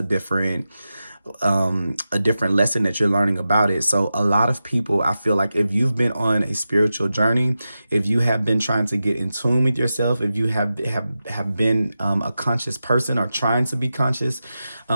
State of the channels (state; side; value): inverted; both; correlation -0.91